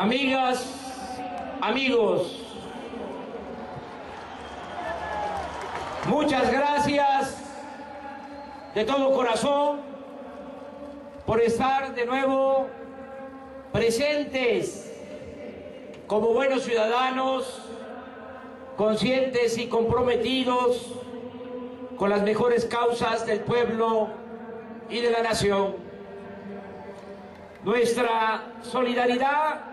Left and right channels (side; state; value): both; identical; correlation 1.00